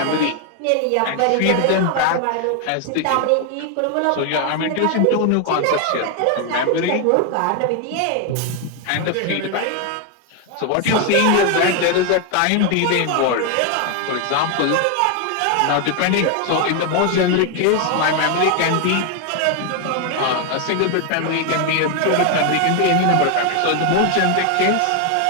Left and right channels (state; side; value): different; both; correlation 0.01